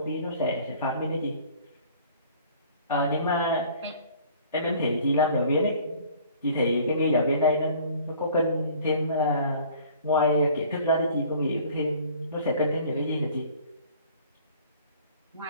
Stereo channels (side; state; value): both; inverted; correlation -0.51